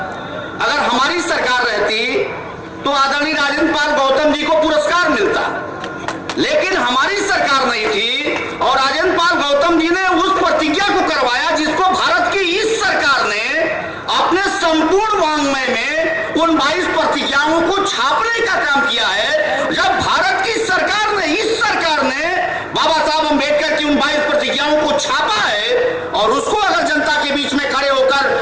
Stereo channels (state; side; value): identical; both; correlation 1.00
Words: अगर हमारी सरकार रहती तो आदरणीय राजेंद्र पाल गौतम जी को पुरस्कार मिलता, लेकिन हमारी सरकार नहीं थी और राजेंद्र पाल गौतम जी ने उस प्रतिज्ञा को करवाया जिसको भारत की इस सरकार ने अपने संपूर्ण वांग्मय में उन 22 प्रतिज्ञाओं को छापने का काम किया है। जब भारत की सरकार ने, इस सरकार ने बाबा साहब अम्बेडकर की उन 22 प्रतिज्ञाओं को छापा है और उसको अगर जनता के बीच में खड़े